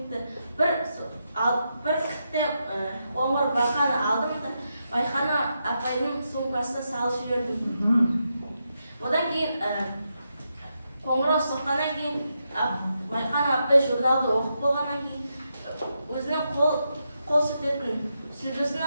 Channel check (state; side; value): inverted; both; correlation -0.84